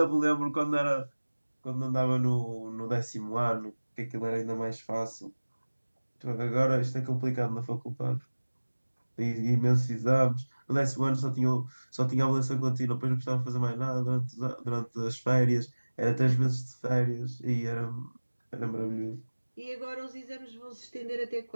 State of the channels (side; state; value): both; inverted; correlation -1.00